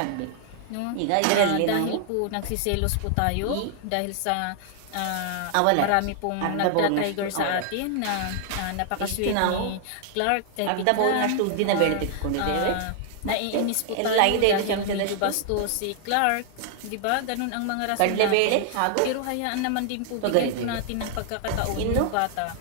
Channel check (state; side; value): different; both; correlation 0.00